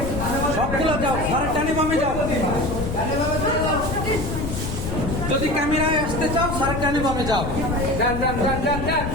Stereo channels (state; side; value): noise; left; rumble, 4 dB below the sound